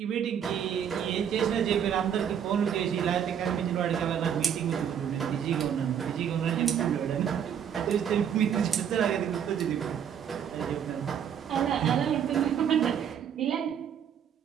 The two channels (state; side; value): quieter; left; 8.5 dB